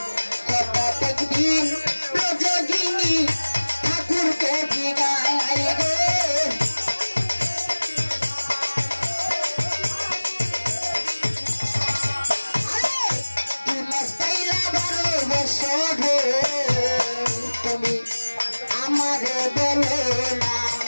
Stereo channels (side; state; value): both; inverted; correlation -1.00